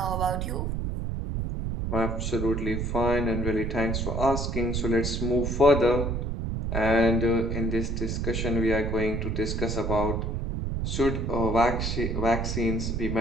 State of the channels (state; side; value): noise; right; rumble, 1 dB below the sound